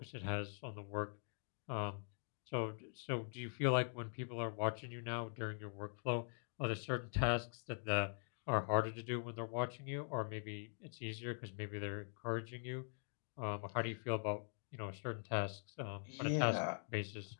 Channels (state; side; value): silent; right; digital silence